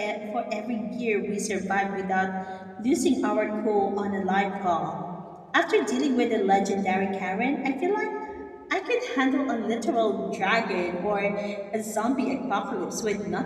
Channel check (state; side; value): identical; both; correlation 1.00